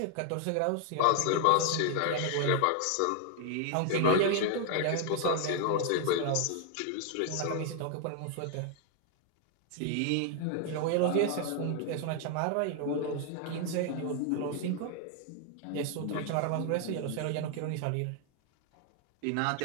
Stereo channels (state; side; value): different; both; correlation 0.00